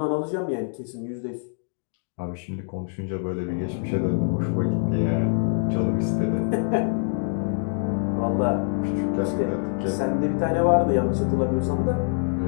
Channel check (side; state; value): right; silent; digital silence